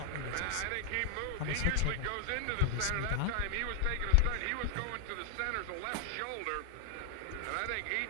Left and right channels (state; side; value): different; both; correlation 0.00